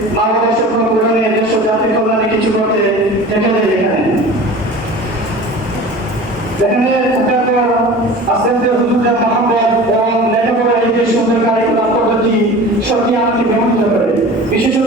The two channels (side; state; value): both; normal; correlation 0.38